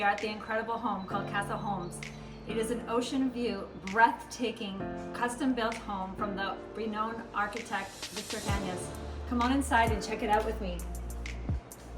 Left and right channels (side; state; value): both; identical; correlation 1.00